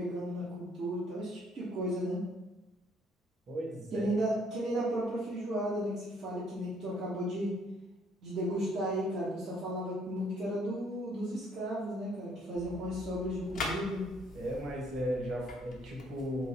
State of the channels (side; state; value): both; normal; correlation 0.65